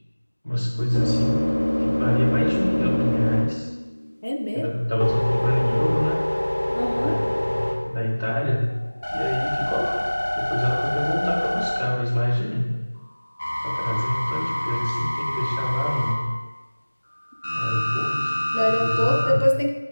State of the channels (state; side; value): inverted; both; correlation -1.00